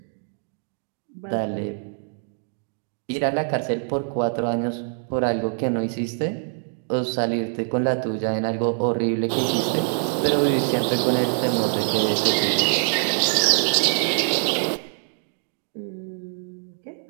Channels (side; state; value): left; silent; 62 dB below the other